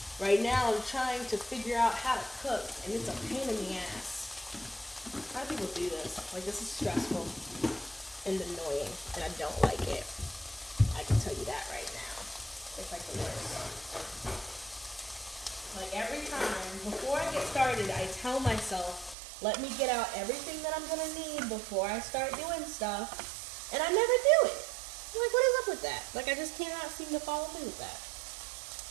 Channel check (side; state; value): left; drops out; at 19.2 s